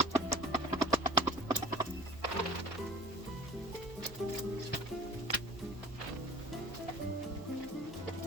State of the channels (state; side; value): normal; both; correlation 0.44